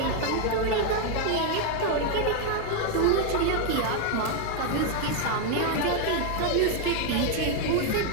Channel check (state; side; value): different; both; correlation 0.00